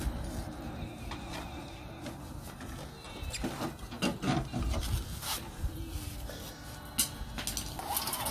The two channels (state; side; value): identical; both; correlation 1.00